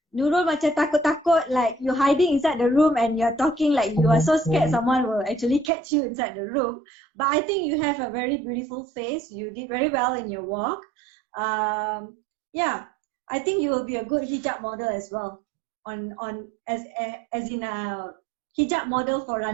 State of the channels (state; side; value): drops out; left; at 5.7 s